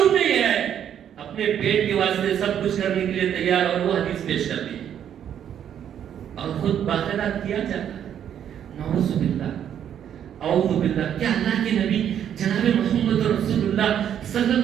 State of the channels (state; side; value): quieter; left; 9.5 dB